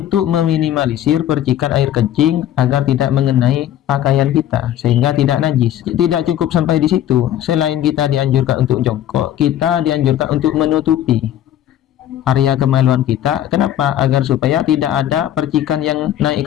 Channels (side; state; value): right; quieter; 11.6 dB